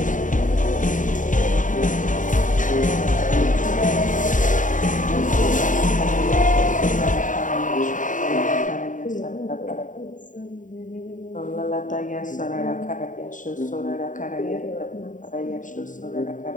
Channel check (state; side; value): late; right; 0.37 ms